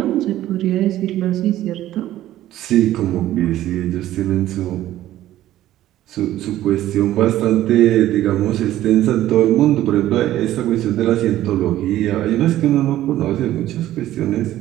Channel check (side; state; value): left; quieter; 13.8 dB